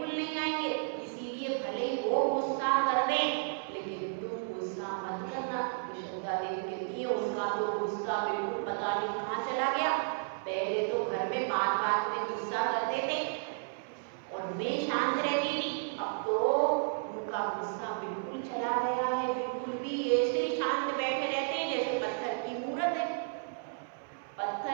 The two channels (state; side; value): silent; left; 56 dB below the other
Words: नहीं आएंगे। इसीलिए भले ही वो गुस्सा कर दे लेकिन तुम गुस्सा मत करना। श्रद्धा देवी कहती है उनका तो गुस्सा बिल्कुल पता नहीं कहाँ चला गया। पहले तो घर में बात बात में गुस्सा करते थे और मैं शांत रहती थी, अब तो उनका गुस्सा बिल्कुल चला गया है। बिल्कुल भी ऐसे शांत बैठे रहते हैं जैसे पत्थर की मूर्त है।